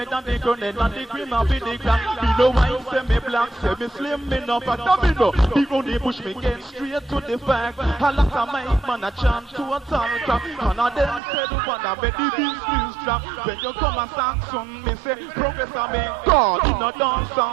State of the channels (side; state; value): left; drops out; at 11.2 s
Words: that the grenade and the cream of the clan. Me no white, say me black, say me slim, me no fat, me no. People they push me get straight to the fact. A lot of mic man a chant to a town crap. None of them say the one that bet the business trap. When you come a Saxon, me say Professor me God. In a dance